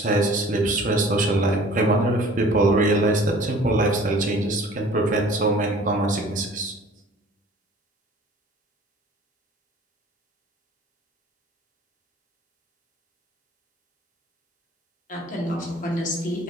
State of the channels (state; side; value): normal; both; correlation 0.49